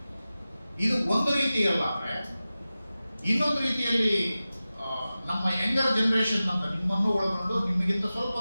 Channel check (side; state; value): both; inverted; correlation -0.95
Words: ಇದು ಒಂದು ರೀತಿಯಲ್ಲ. ಇನ್ನೊಂದು ರೀತಿಯಲ್ಲಿ ನಮ್ಮ ಯಂಗರ್ ಜನರೇಷನ್ ಅಂತ ನಿಮ್ಮನ್ನು ಒಳಗೊಂಡು ನಿಮಗಿಂತ ಸ್ವಲ್ಪ